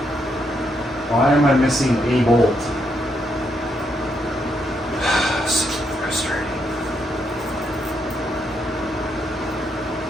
Why am I missing a bolt? So frustrating.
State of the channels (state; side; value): normal; both; correlation 0.78